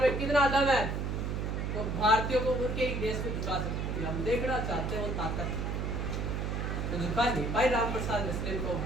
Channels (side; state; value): right; noise; hum, 1 dB below the sound